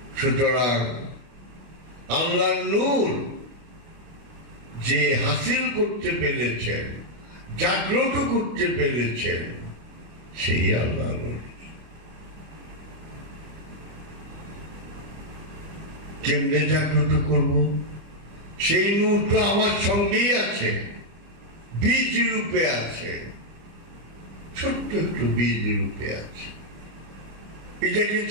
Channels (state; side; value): late; left; 25 ms